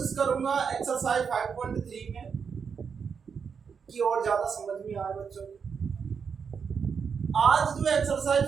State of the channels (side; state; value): left; quieter; 6.3 dB